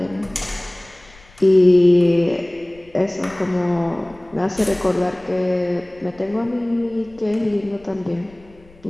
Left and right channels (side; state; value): left; noise; rumble, 27 dB below the sound